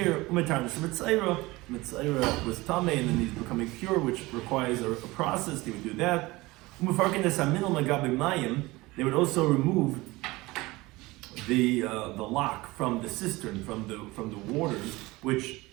Umetar Mitzayra. Mitzayra was Tameh, and then he's becoming pure, which requires a process. They would do that. Umefarkin Esaminal Magabi Mayim. They would also remove the lock from the cistern, from the waters, which,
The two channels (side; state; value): left; quieter; 21.0 dB